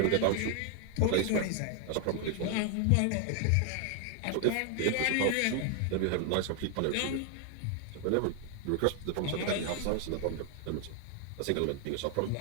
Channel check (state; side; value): different; both; correlation 0.00